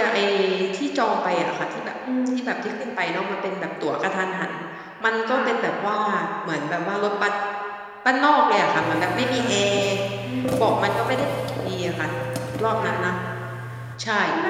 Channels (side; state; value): both; identical; correlation 1.00